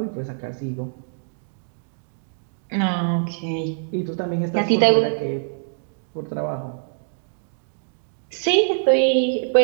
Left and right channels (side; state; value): left; silent; digital silence